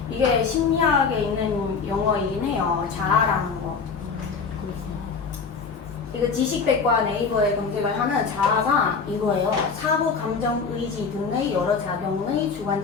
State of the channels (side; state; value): right; quieter; 5.3 dB